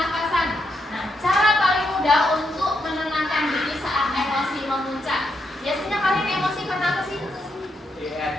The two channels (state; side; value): normal; both; correlation 0.81